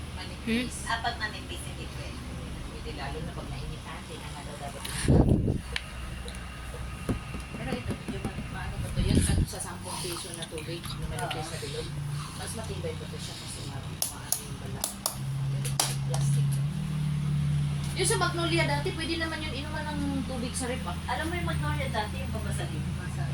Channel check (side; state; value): both; identical; correlation 1.00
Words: manipis. Apat manipis, hindi pwede. Hindi lalo na pag nainitan, hindi na nga daw dapat. Pero ito, yung maano ba ito, yun sa 10 piso na tubig na manipis na bilog. Mas matibay pa ito siya kasi maano yung bala. Plastic. Yung sa Magnolia dati, pwede naman yun inuman ng tubig sa rep ah. Alam mo yung Magnolia dati, yung babasagin,